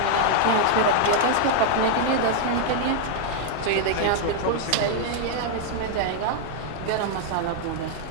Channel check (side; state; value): both; different; correlation 0.00